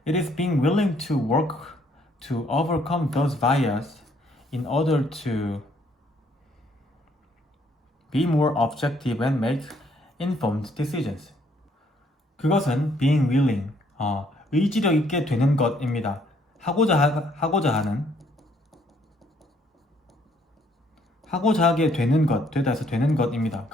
It is being willing to work to overcome those biases in order to be more objective and make informed decisions. 그것은 being willing, 의지력 있게 되는 것입니다. 하고자 하게 되는 것, 되다 해서 되는 것입니다.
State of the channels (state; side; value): normal; both; correlation 0.66